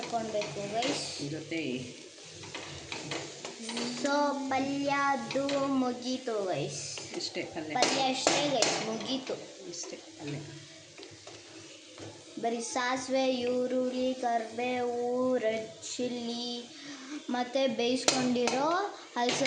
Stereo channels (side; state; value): both; identical; correlation 1.00